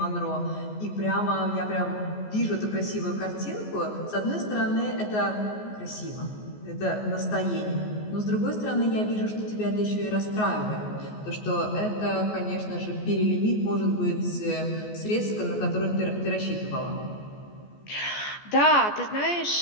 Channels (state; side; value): late; right; 14 ms